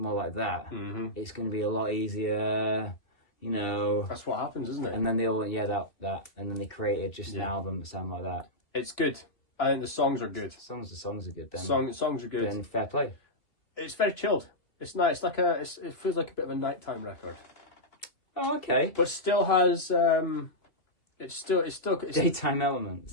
like that, it's gonna be a lot easier. That's what happens, isn't it? And then they all went, that, and then they created just an album that sounded like that. It's good. I think the songs are good. The songs are good. Then songs are good. Then fair play. It's very chilled. It's nice. It feels like a bit of a nighttime record. Oh, okay. But still has it's daytime elements.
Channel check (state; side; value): late; right; 2.6 ms